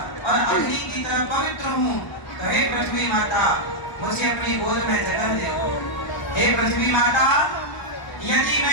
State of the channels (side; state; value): right; late; 1.0 ms